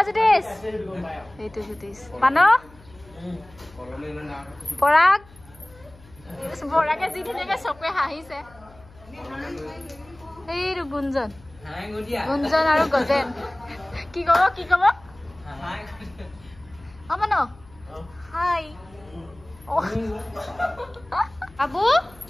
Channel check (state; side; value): noise; left; hum, 24 dB below the sound